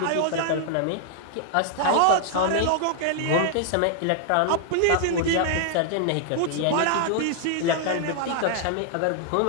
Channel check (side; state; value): both; different; correlation -0.01